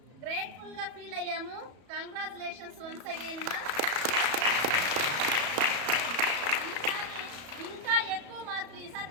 గ్రేట్ఫుల్గా ఫీల్ అయ్యాము. కంగ్రాచులేషన్స్ వన్స్ అగైన్ మా. ఈసారి ఇంకా ఎక్కువ మార్కులు, ఈసారి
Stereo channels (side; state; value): left; late; 34 ms